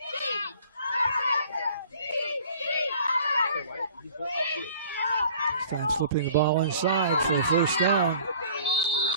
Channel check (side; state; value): both; inverted; correlation -0.50